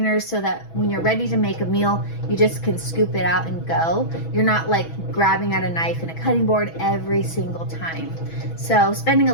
so that when you're ready to make a meal, you just can scoop it out and go. You're not like grabbing out a knife and a cutting board every single time. So spending a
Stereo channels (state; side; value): late; right; 6.1 ms